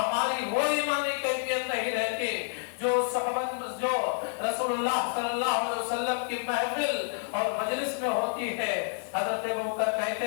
وہ ایمانی کیفیت نہیں رہتی جو صحبت جو رسول اللہ صلی اللہ علیہ وسلم کی محفل اور مجلس میں ہوتی ہے۔ حضرت ابوبکر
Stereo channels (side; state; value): right; silent; digital silence